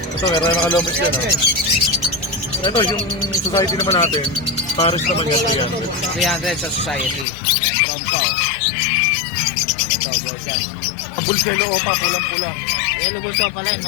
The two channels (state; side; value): drops out; right; at 7.2 s